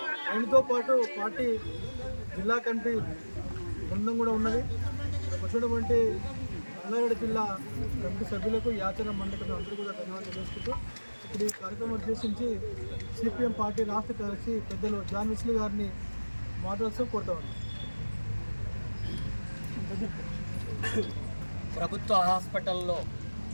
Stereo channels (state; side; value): inverted; both; correlation -1.00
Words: ఆయనతో పాటు పార్టీ జిల్లా కమిటీ బృందం కూడా ఉన్నది. వచ్చినటువంటి రంగారెడ్డి జిల్లా కమిటీ సభ్యులకు యాచన మండలి అందరూ కూడా ధన్యవాదాలు తెలుసుకుంటూ ఇప్పుడు ఈ కార్యక్రమం ఉద్దేశించి సిపిఎం పార్టీ రాష్ట్ర కార్యదర్శి పెద్దలు జాన్ విస్లీ గారిని మాట్లాడుతూ కోరుతా ఉన్నాం. ప్రభుత్వ హాస్పిటల్లో